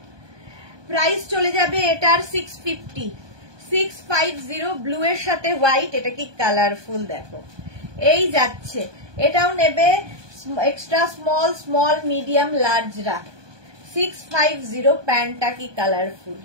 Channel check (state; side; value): late; left; 1.2 ms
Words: প্রাইস চলে যাবে এটার 650, 650। ব্লু এর সাথে হোয়াইট, এটা কি কালারফুল দেখো, এই যাচ্ছে। এটাও নেবে এক্সট্রা স্মল, স্মল, মিডিয়াম, লার্জরা। 650, প্যান্টটা কি কালারফুল।